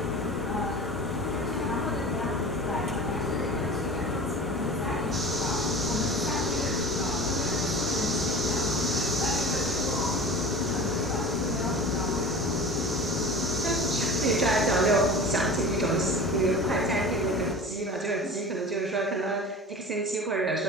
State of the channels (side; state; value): both; normal; correlation 0.36